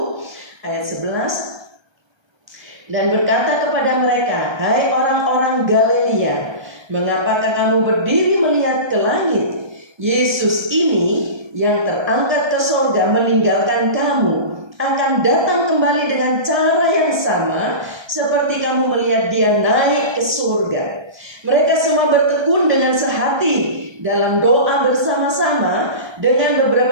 ayat 11. Dan berkata kepada mereka, hai orang-orang Galilea, mengapakah kamu berdiri melihat ke langit? Yesus ini yang terangkat ke surga meninggalkan kamu, akan datang kembali dengan cara yang sama seperti kamu melihat dia naik ke surga. Mereka semua bertekun dengan sehati dalam doa bersama-sama dengan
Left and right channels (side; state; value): left; late; 1.3 ms